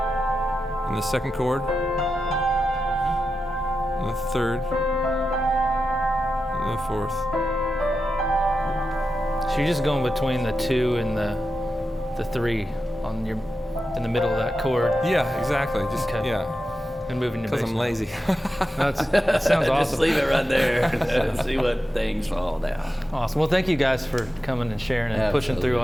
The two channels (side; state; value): both; normal; correlation 0.90